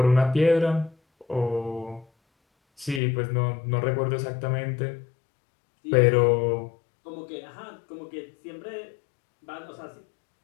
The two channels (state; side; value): drops out; right; at 3.0 s